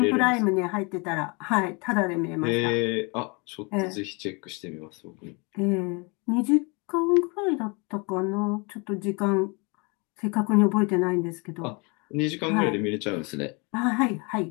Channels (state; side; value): quieter; right; 30.5 dB